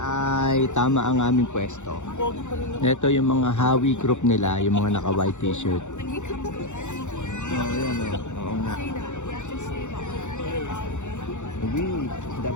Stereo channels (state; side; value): late; right; 0.84 ms